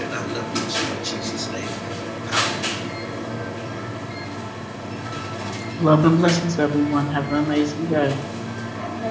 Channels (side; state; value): both; identical; correlation 1.00